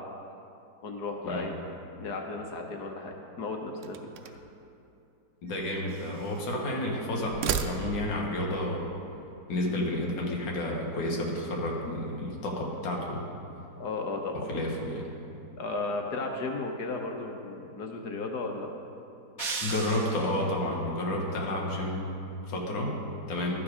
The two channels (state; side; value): late; right; 4.2 ms